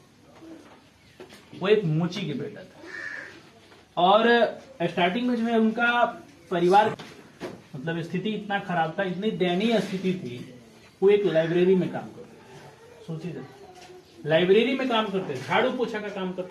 वो एक मोची के बेटा था। और स्टार्टिंग में जो है उनका परिवार मतलब स्थिति इतना खराब था, इतनी दयनीय स्थिति थी, वो एक लाइब्रेरी में काम करते थे। सोचिए, लाइब्रेरी में काम करते थे, झाड़ू पोछा का काम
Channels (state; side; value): identical; both; correlation 1.00